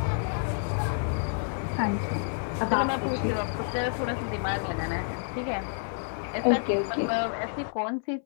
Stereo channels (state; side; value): silent; right; 58 dB below the other